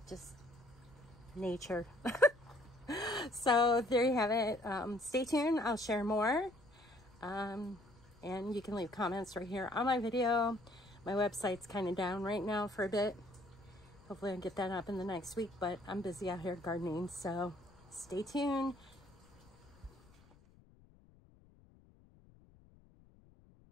just nature. So there you have it. Stay tuned. I'll share more. And you can leave comments right here on my video. My website's kind of down right now for a bit. Hopefully I'll get that up in the next week, but I'm busy out here gardening, so stay tuned.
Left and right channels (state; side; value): noise; left; rumble, 26 dB below the sound